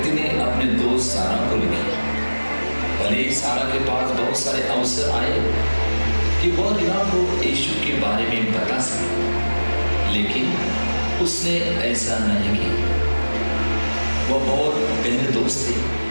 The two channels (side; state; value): both; inverted; correlation -1.00